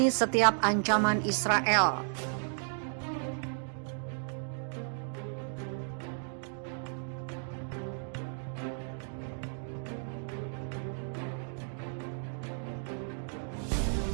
setiap ancaman Israel.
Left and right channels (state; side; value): silent; left; 55 dB below the other